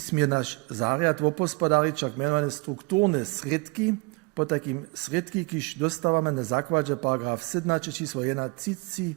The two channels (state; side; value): quieter; left; 28.0 dB